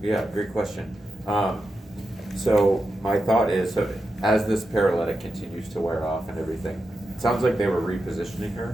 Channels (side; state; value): both; normal; correlation 0.88